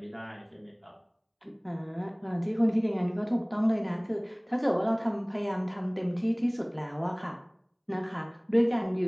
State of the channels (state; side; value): identical; both; correlation 1.00